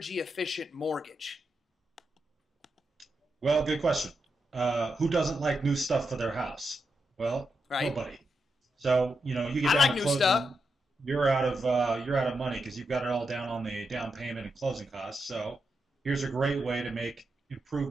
efficient mortgage? Well, good question. Who doesn't like new stuff for their house? Well, Right? nobody. So, you get I down like to new stuff. closing, you're out of money because you've got it all down on the down payment and closing costs. So, here's a great way to make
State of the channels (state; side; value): normal; both; correlation 0.85